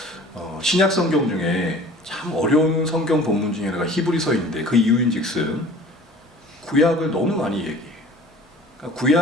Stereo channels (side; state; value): both; normal; correlation 0.46